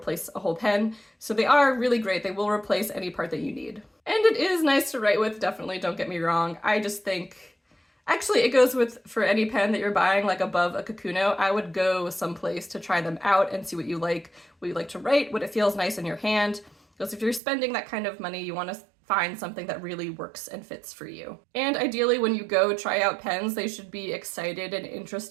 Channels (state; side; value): drops out; left; at 17.4 s